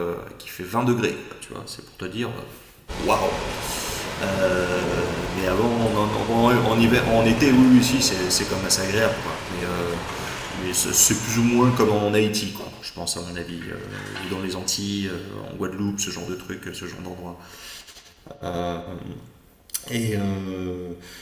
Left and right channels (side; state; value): both; identical; correlation 1.00